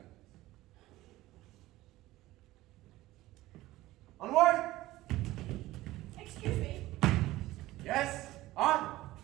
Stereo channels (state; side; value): quieter; left; 17.1 dB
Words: Onward! Excuse me. Yes? On!